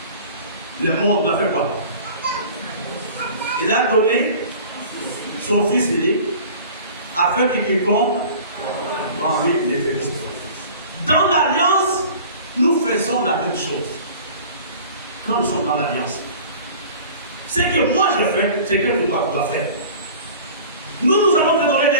le monde, il a fait quoi? Il a donné son Fils unique afin qu'il quiconque en lui les bénisse. Dans l'alliance, nous faisons la même chose. Quand nous sommes dans l'alliance, ce que moi je fais, c'est que toi tu dois faire. Nous allons te donner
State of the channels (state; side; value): inverted; both; correlation -0.43